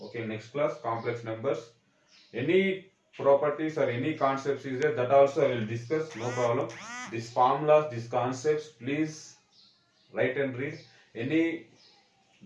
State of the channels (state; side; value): identical; both; correlation 1.00